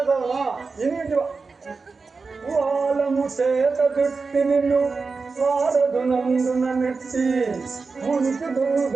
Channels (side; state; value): left; quieter; 4.4 dB